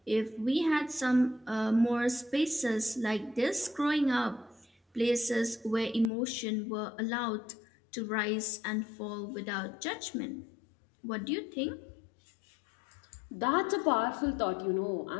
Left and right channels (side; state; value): right; drops out; at 6.1 s